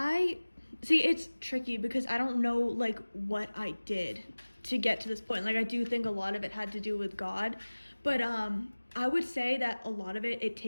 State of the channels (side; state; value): both; inverted; correlation -1.00